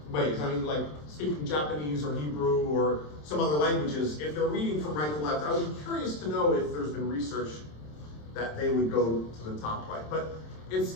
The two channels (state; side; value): late; right; 27 ms